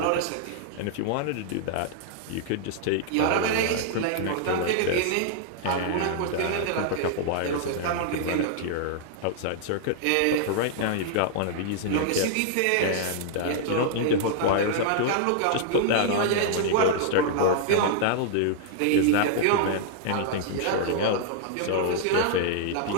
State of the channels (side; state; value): both; different; correlation -0.01